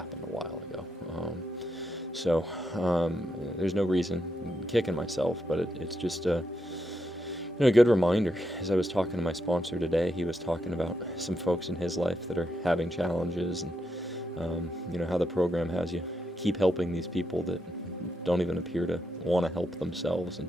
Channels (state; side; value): normal; both; correlation 0.82